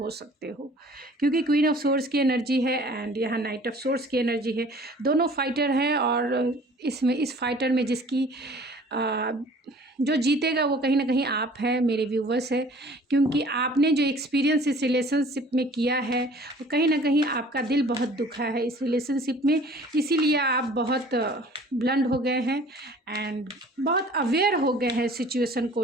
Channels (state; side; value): normal; both; correlation 0.50